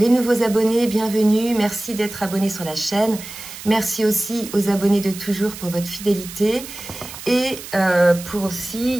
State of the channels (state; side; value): noise; right; hiss, 13 dB below the sound